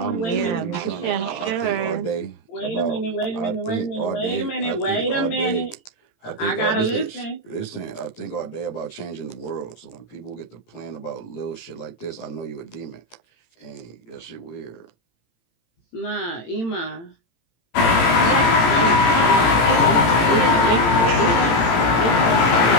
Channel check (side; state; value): right; late; 18 ms